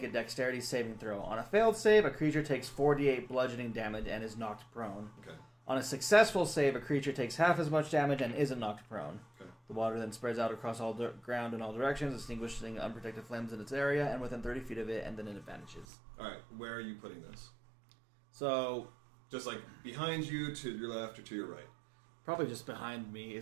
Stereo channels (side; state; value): left; drops out; at 15.9 s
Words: a dexterity saving throw. On a failed save, a creature takes 4d8 bludgeoning damage and is knocked prone. Okay. On a successful save, a creature takes half as much damage and isn't knocked prone. Okay. The water then spreads out across all ground in all directions, extinguishing unprotected flames in its area and within 30 feet of it, and then it vanishes. All right. Where are you putting this? So, Just like behind you, to your left, or to your right? probably just behind me,